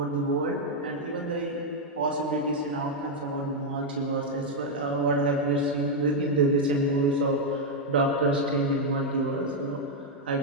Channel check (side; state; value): both; normal; correlation -0.01